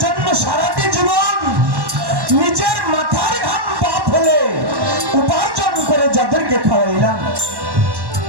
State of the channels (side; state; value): left; late; 1.1 ms